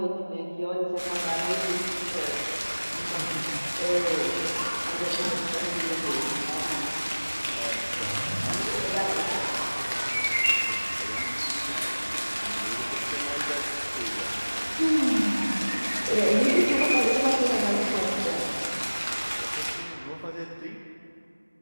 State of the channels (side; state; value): both; inverted; correlation -1.00